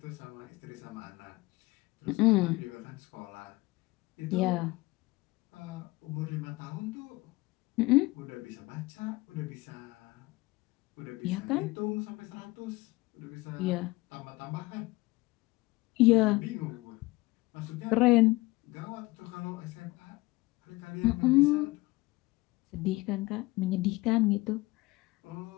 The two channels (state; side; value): quieter; right; 21.7 dB